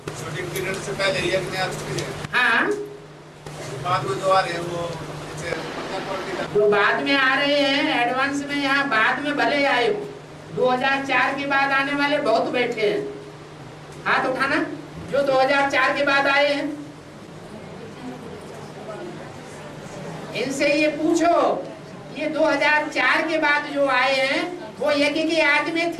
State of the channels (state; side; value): identical; both; correlation 1.00